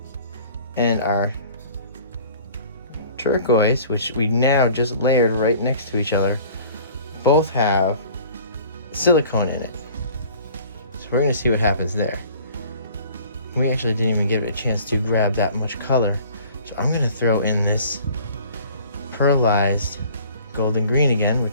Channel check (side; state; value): both; inverted; correlation -0.49